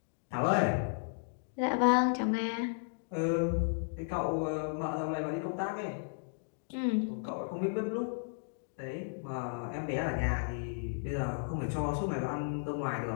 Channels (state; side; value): silent; right; digital silence